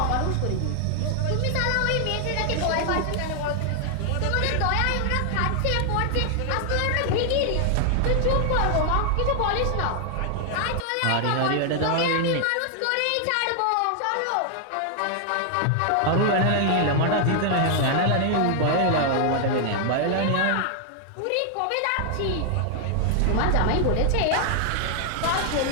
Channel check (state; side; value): different; both; correlation 0.00